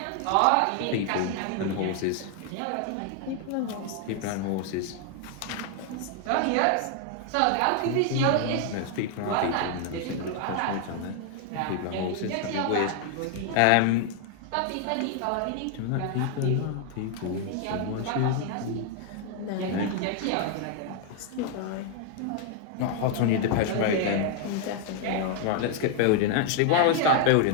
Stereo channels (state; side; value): different; both; correlation 0.00